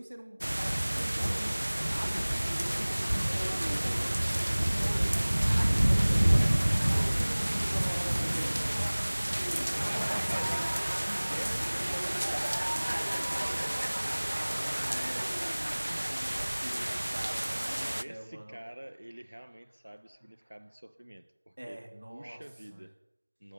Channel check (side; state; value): both; inverted; correlation -1.00